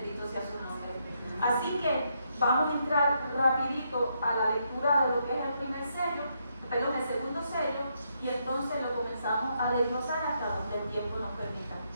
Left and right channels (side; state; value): both; inverted; correlation -0.77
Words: sea su nombre. Así que vamos a entrar rapidito a la lectura de lo que es el segundo sello, y entonces lo comenzamos a desglosar hasta donde el tiempo nos permita.